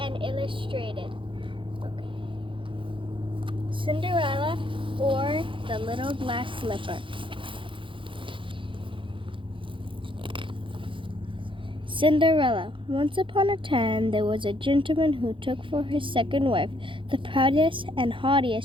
illustrated. Okay. Cinderella, or the Little Glass Slipper. Cinderella. Once upon a time, there was a gentleman who took for his second wife the proudest and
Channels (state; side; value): late; left; 0.25 ms